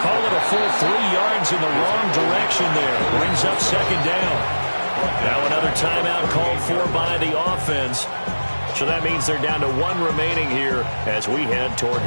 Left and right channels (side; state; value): both; inverted; correlation -1.00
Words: Call it a full 3 yards in the wrong direction there. Brings up 2nd down. Now another timeout called for by the offense. So that means they're down to 1 remaining here as we head toward